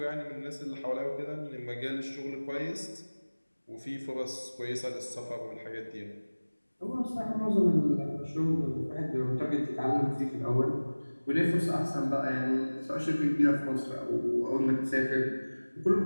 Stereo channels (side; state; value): both; inverted; correlation -1.00